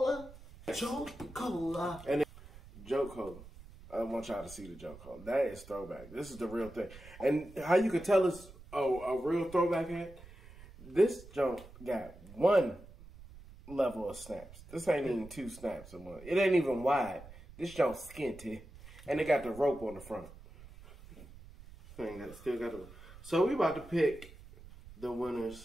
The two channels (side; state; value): right; noise; rumble, 18 dB below the sound